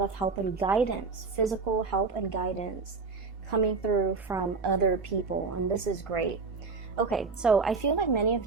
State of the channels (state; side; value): quieter; left; 4.5 dB